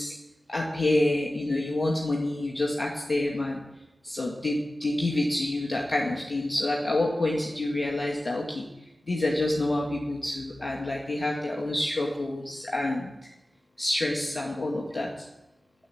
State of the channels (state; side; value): normal; both; correlation 0.95